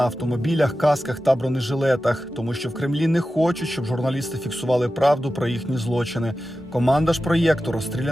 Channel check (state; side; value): normal; both; correlation 0.93